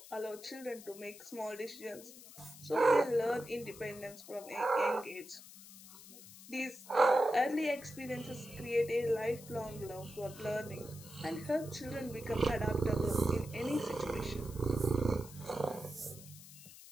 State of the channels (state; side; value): noise; left; hiss, 17 dB below the sound